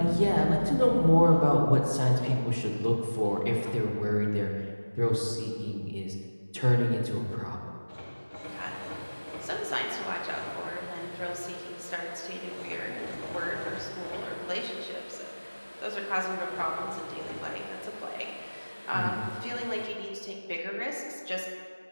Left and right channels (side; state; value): both; inverted; correlation -1.00